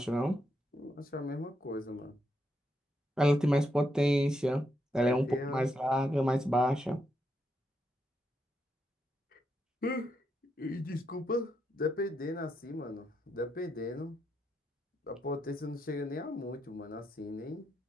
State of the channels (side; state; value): both; normal; correlation 0.81